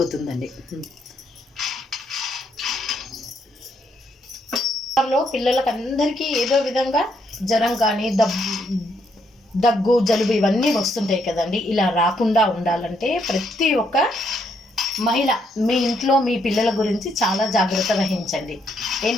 పిల్లలకు అందరికీ ఏదో విధంగా జ్వరం కానీ దగ్గు, జలుబు ఇవన్నీ వస్తుంటాయి కదండి. ఇలా రాకుండా ఉండాలంటే ప్రతి ఒక్క మహిళ మీ ఇంట్లో మీ పిల్లల గురించి చాలా జాగ్రత్త వహించండి.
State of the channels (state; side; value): normal; both; correlation 0.74